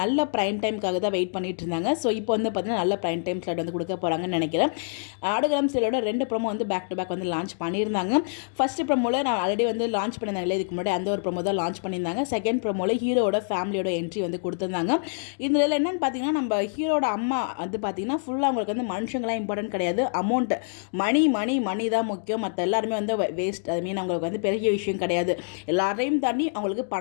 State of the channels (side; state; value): right; silent; digital silence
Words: நல்ல ப்ரைம் டைமுக்காக தான் வெயிட் பண்ணிட்டு இருந்தாங்க. ஸோ இப்போ வந்து பார்த்தீங்கன்னா நல்ல ப்ரைம் டைம் ஸ்லாட் வந்து கொடுக்க போகிறாங்கன்னு நினைக்கிறேன். ஆடுகளம் சீரியலோட 2 ப்ரோமோ வந்து பேக் டு பேக் வந்து லான்ச் பண்ணியிருந்தாங்க. ஃபஸ்ட்டு ப்ரோமோவில் நான் ஆல்ரெடி வந்து லான்ச் பண்ணியிருந்தாங்களே, இதுக்கு முன்னாடி அந்த ஒரு ப்ரோமோ தான் லான்ச் பண்ணியிருந்தாங்க. செகண்ட் ப்ரோமோவில் ஹீரோட ஃபேமிலியோட என்ட்ரி வந்து கொடுத்துருந்தாங்க. இதில் என்னென்னு பார்த்தீங்கன்னா, நம்ம ஹீரோட அம்மா வந்து பார்த்தீங்கன்னா ஃபுல்லாக அவங்களுக்கு வந்து மனுஷங்களாம் இம்பார்ட்டன்ட் கிடையாது, அமௌண்ட் மணி தான் முக்கியம், மற்ற எல்லாருமே வந்து வேஸ்ட். அது மீன் அவங்களுக்கு வந்து பெரிய விஷயம் கிடையாது, எல்லாரையும் தாண்டி அவங்களுக்கு